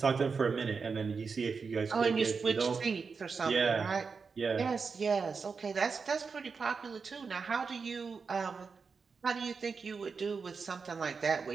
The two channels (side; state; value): left; quieter; 5.2 dB